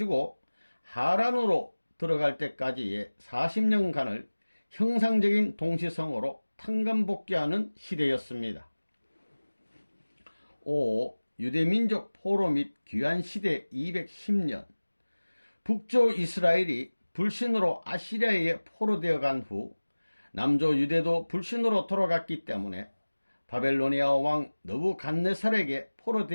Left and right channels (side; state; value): both; inverted; correlation -1.00